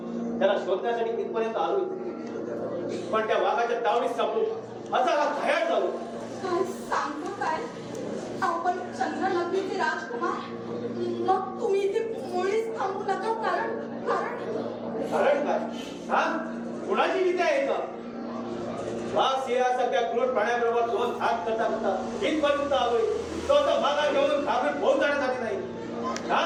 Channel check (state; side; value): identical; both; correlation 1.00